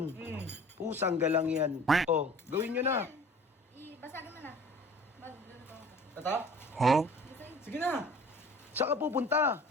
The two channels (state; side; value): normal; both; correlation 0.46